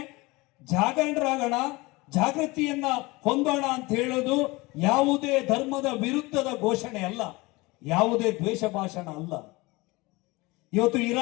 ಜಾಗರಣರಾಗೋಣ, ಜಾಗೃತಿಯನ್ನ ಹೊಂದೋಣ ಅಂತ ಹೇಳೋದು ಯಾವುದೇ ಧರ್ಮದ ವಿರುದ್ಧದ ಘೋಷಣೆ ಅಲ್ಲ, ಯಾವುದೇ ದ್ವೇಷ ಭಾಷಣ ಅಲ್ಲ. ಇವತ್ತು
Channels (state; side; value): quieter; right; 23.0 dB